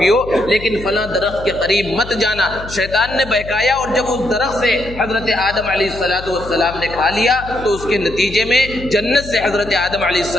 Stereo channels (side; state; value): left; noise; hum, 13 dB below the sound